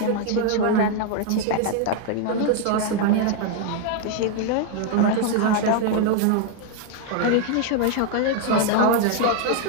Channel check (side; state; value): both; different; correlation 0.00